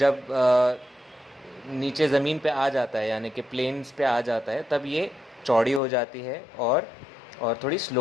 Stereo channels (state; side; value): drops out; right; at 5.8 s